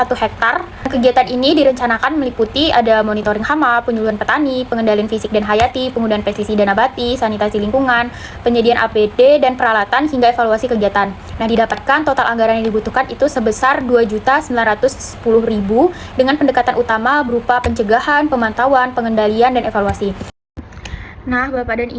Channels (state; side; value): identical; both; correlation 1.00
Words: hektar. Kegiatan ini direncanakan meliputi ada monitoring hama, penyuluhan petani, pengendalian fisik dan hayati, penggunaan pestisida nabati, sanitasi lingkungan, penyediaan APD dan peralatan hingga evaluasi kegiatan. Nah, didapatkan total anggaran yang dibutuhkan itu sebesar 2.910.000 dengan pendekatan utama berupa pencegahan, pemantauan, pengendalian dan evaluasi. Nah, Bapak dan